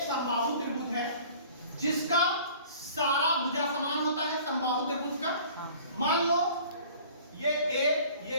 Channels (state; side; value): inverted; both; correlation -0.48